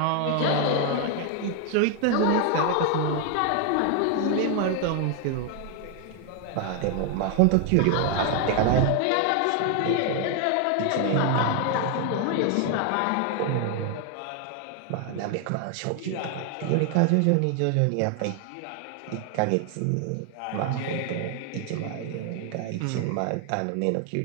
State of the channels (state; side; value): different; both; correlation 0.00